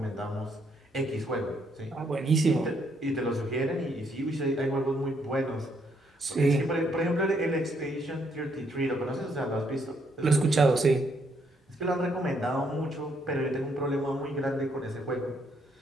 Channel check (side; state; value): both; normal; correlation 0.72